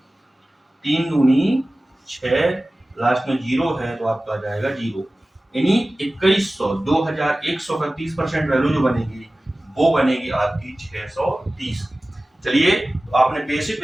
3 दूनी 6, लास्ट में जीरो है तो आपका आ जाएगा जीरो। यानी 2100 2100 का 30% वैल्यू जो बनेगी वो बनेगी आपकी 630। चलिए तो आपने बेसिक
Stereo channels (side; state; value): both; normal; correlation 0.97